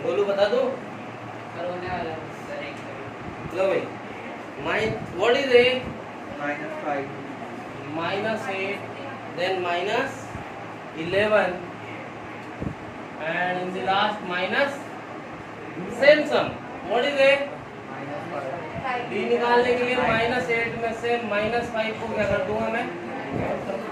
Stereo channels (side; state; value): both; identical; correlation 1.00